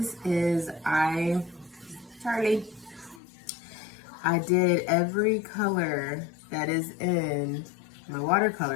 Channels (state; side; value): drops out; right; at 3.2 s